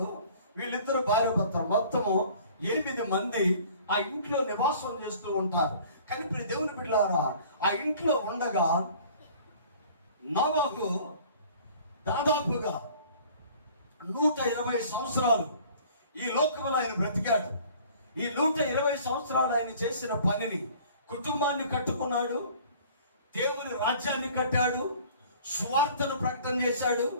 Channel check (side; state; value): both; inverted; correlation -0.50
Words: వీళ్ళిద్దరు భార్య భర్తలు, మొత్తము 8 మంది ఆ ఇంట్లో నివాసం చేస్తూ ఉంటారు. కానీ ఇప్పుడు దేవుని బిడ్డలారా, ఆ ఇంట్లో ఉండగా నోవహు దాదాపుగా 120 సంవత్సరాలు ఈ లోకంలో ఆయన బ్రతికాడు. ఈ 120 సంవత్సరాలు ఆయన చేసిన పనిని, కుటుంబాన్ని కట్టుకున్నాడు, దేవుని రాజ్యాన్ని కట్టాడు, సువార్తను ప్రకటన చేశాడు,